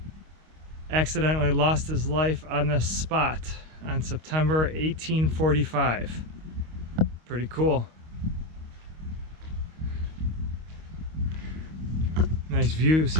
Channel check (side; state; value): left; late; 25 ms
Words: accidentally lost his life on this spot on September 1845. Pretty cool. Nice views